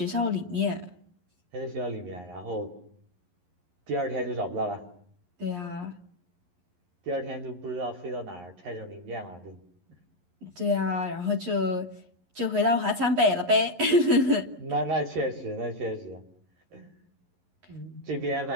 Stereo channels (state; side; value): late; left; 11 ms